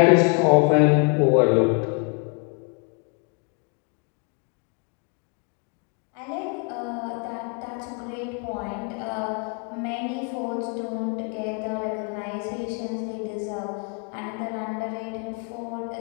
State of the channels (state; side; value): quieter; right; 36.2 dB